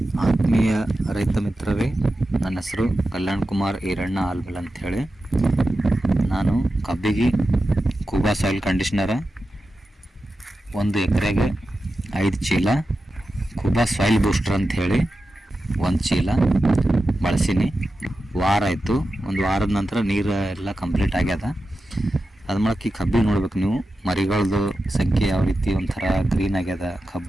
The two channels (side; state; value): both; normal; correlation 0.91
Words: ಆತ್ಮೀಯ ರೈತ ಮಿತ್ರರೇ, ನನ್ನ ಹೆಸರು ಕಲ್ಯಾಣ್ ಕುಮಾರ್ ಈರಣ್ಣ ಆಲ್ಬಲ್ ಅಂಥೇಳಿ. ನಾನು ಕಬ್ಬಿಗೆ ಕೂಬಾ ಸಾಯಿಲ್ ಕಂಡೀಷ್ನರ 1 ಎಕರೆಗೆ 5 ಚೀಲ, ಕೂಬಾ ಸಾಯಿಲ್ ಬೂಸ್ಟರ್ ಅಂಥೇಳಿ 1 ಚೀಲ ಬಳಸೀನಿ. ವಾರ ಆಯಿತು. ಒಂದು ವಾರದ ನಂತರ ನೀರು ಎಲ್ಲ ಕಂಪ್ಲೀಟ್ ಆಗ್ಯದ. ಅದು ಮಾಡಕ್ಕೆ ಈ ಕಬ್ಬಿಗೆ ನೋಡ್ಬೇಕು ನೀವು, ಮರಿಗಳದ್ದು ಸಂಖ್ಯೆ ಯಾವ ರೀತಿ ಒಂಥರ ಗ್ರೀನ್ ಆಗ್ಯದ.